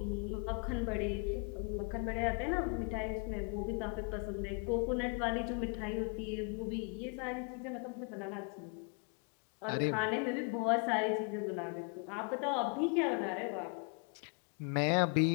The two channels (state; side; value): quieter; right; 34.6 dB